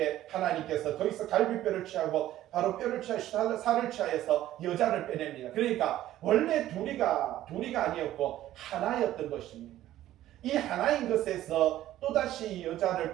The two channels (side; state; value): left; quieter; 13.7 dB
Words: 하나님께서 거기서 갈비뼈를 취하고 바로 뼈를 취하여 살을 취하여서 여자를 빼냅니다. 그러니까 원래 둘이가 아니었고 하나였던 것입니다. 이 하나인 것에서 또다시 여자를